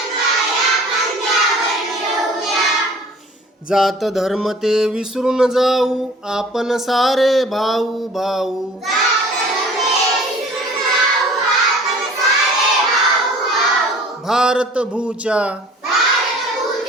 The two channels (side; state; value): both; normal; correlation 0.48